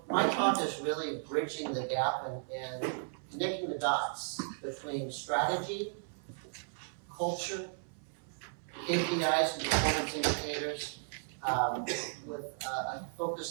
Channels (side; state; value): left; silent; 54 dB below the other